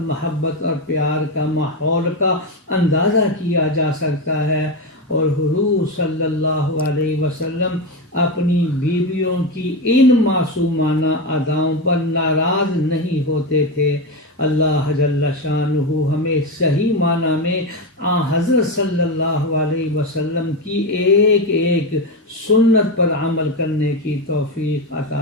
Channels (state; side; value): normal; both; correlation 0.14